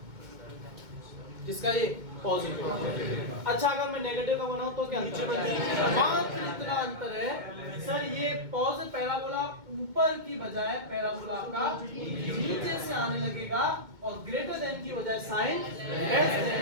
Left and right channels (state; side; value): late; left; 2.2 ms